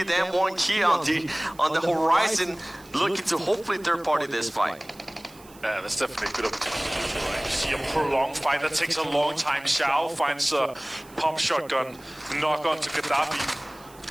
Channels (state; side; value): noise; right; hiss, 24 dB below the sound